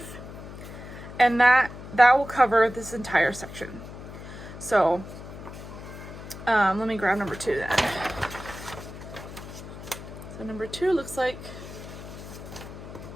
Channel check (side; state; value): left; noise; hum, 13 dB below the sound